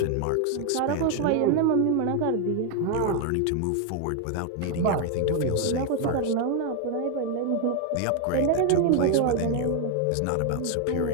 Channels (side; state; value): both; different; correlation 0.01